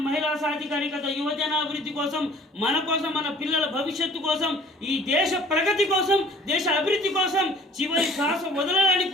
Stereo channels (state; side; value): normal; both; correlation 0.51